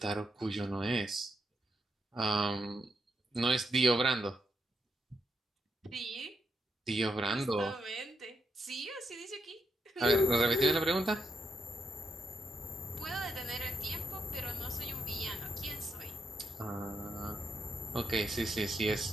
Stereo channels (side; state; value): both; normal; correlation 0.82